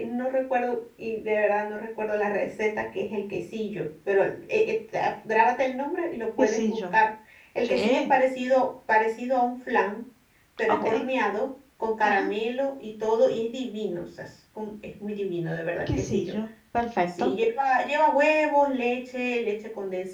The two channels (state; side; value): identical; both; correlation 1.00